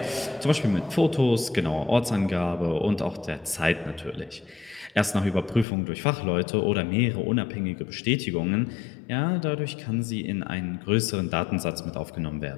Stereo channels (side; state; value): right; drops out; at 5.7 s